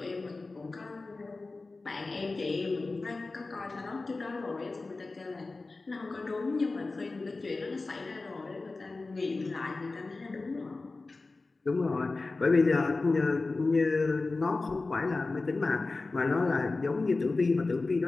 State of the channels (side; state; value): right; quieter; 3.5 dB